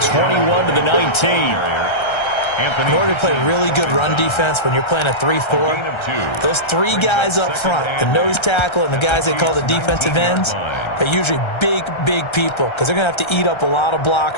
to the 19. In order to play really good run defense when you're playing a 3-4, those three guys up front, the nose tackle and the guys they call the defensive ends, they're usually big, big people because they're going to have to eat up a lot of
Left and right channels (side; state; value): right; late; 1.3 ms